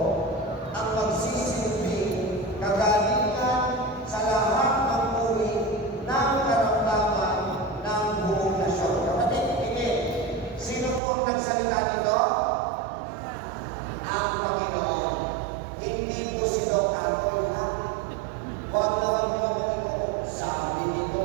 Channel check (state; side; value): drops out; left; at 11.0 s